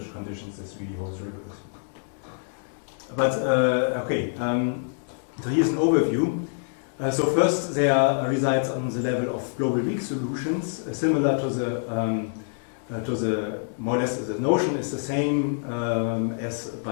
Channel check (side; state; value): right; silent; digital silence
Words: conditions this really holds rigorously. But okay, so here's an overview. So first, there are results on the level of global weak solutions, similar to the more or less the notion is the same as